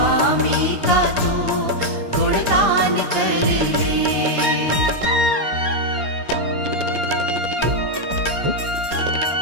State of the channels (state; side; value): late; left; 4.3 ms